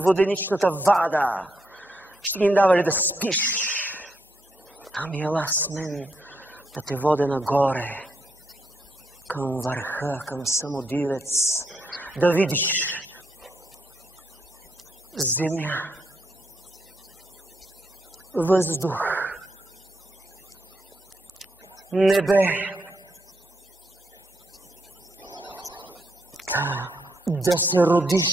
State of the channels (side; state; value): both; normal; correlation 0.78